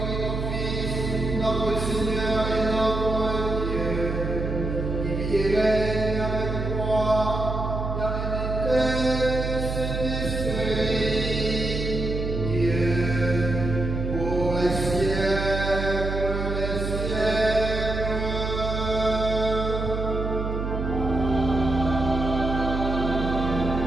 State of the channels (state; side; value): noise; right; hum, 3 dB below the sound